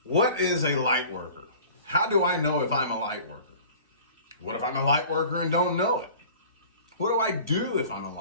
what is a light worker? How do I know if I'm a light worker? What if I'm a light worker and don't know it? What do I do if I'm a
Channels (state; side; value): inverted; both; correlation -0.45